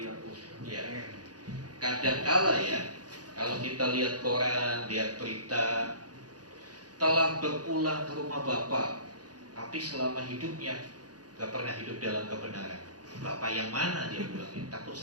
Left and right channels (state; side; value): late; left; 0.69 ms